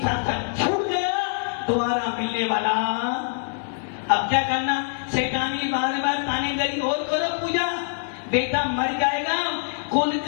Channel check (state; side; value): silent; right; 60 dB below the other